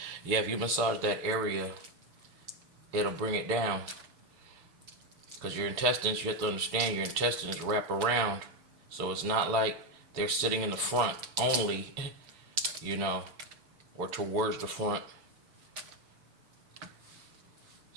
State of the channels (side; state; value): left; late; 7.0 ms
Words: Yeah, if you massage that area, it'll bring it down. Because your intestines, you have to understand, your intestines wrap around. So it's not like they're sitting in the front only, you know, or towards the front.